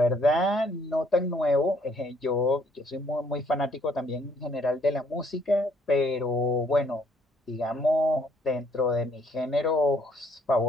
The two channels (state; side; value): normal; both; correlation 0.66